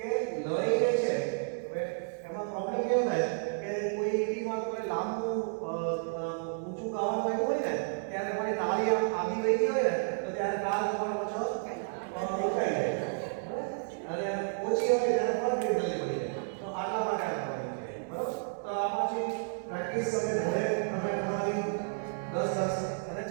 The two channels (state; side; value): silent; left; 57 dB below the other